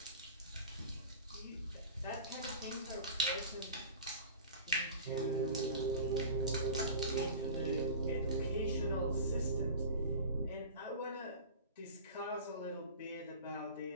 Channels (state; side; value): inverted; both; correlation -0.36